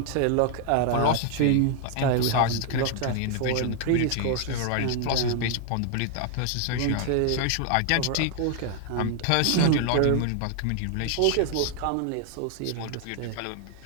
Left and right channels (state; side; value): different; both; correlation 0.00